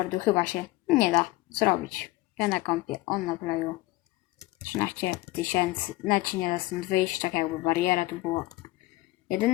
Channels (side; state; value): right; quieter; 19.1 dB